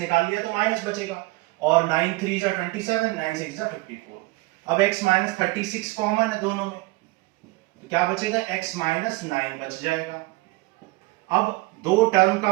लिया तो माइनस बचेगा, और 9 3 जा 27, 9 6 जा 54। अब x माइनस 36 कॉमन है दोनों में, तो क्या बचेगा x माइनस 9 बच जाएगा। अब दो टर्म का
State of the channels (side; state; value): left; quieter; 22.5 dB